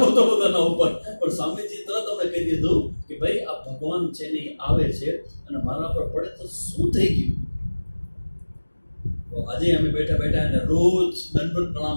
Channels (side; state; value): both; inverted; correlation -1.00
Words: હતો બધાના ઉપર. પણ સ્વામીજી તરત અમને કહી દીધું કે ભાઈ આ ભગવાન છે ને આવે છે અને મારા પર પડે તો શું થઈ ગયું? તો આજે અમે બેઠા બેઠા અને રોજ દંડવત પ્રણામ